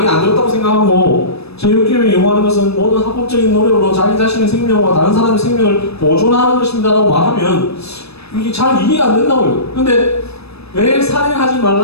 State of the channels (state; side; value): late; right; 0.78 ms